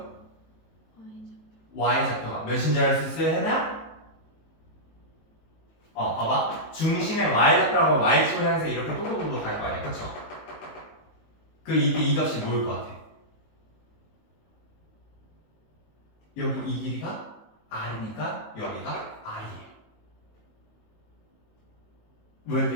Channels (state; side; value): late; right; 19 ms